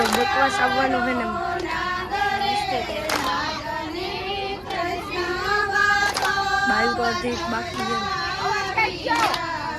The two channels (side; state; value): both; identical; correlation 1.00